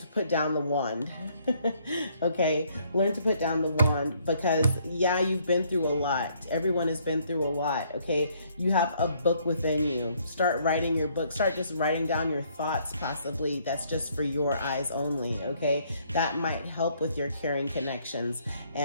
put down the wand. Okay, learn to put down the wand, because yeah, you've been through a lot. Everyone has been through a lot. Okay, you have a book within you. Start writing your book. Start just writing down your thoughts, possibly that's just for your eyes only. Okay, that might help with your caring connections,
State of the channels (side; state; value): both; inverted; correlation -0.66